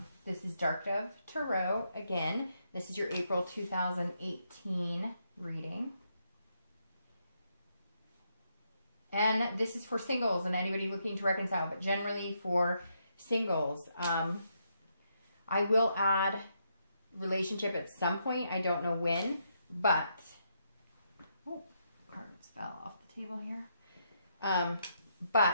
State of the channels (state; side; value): inverted; both; correlation -0.78